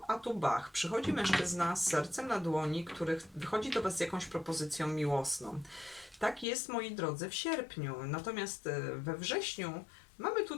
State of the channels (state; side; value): drops out; right; at 6.5 s